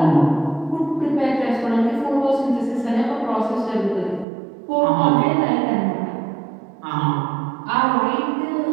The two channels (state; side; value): drops out; left; at 4.2 s